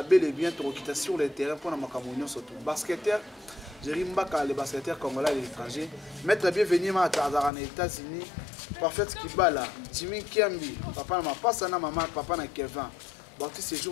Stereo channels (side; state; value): right; drops out; at 7.5 s